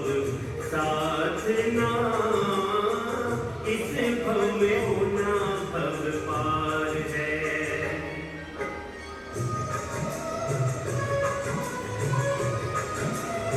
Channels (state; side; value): identical; both; correlation 1.00